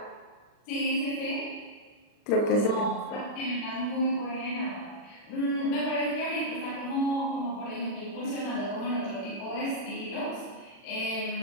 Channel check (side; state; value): right; late; 40 ms